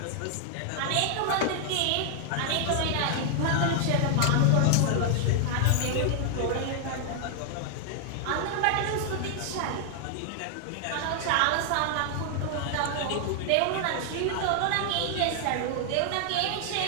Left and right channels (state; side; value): different; both; correlation 0.00